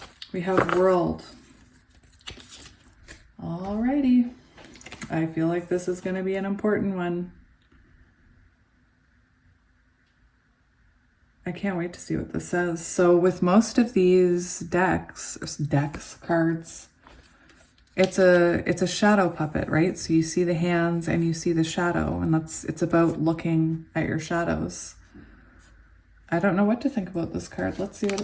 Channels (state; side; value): identical; both; correlation 1.00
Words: We have world. Alrighty. I feel like this is going to be an important one. I can't wait to see what this says. So with most of these cards, it's a shadow puppet, right? So you see the hands and you see the shadow, and it's about looking at your shadows. I don't know what to think about this card. Let's see what